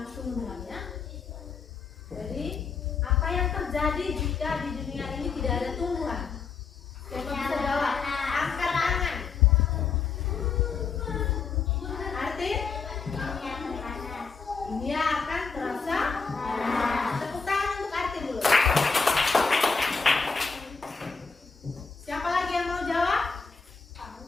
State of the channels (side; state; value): right; quieter; 5.2 dB